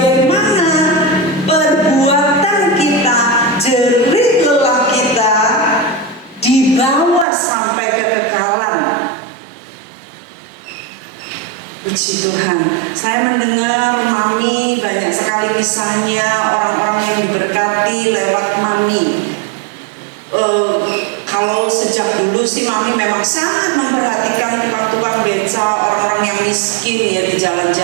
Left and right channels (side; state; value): left; drops out; at 7.2 s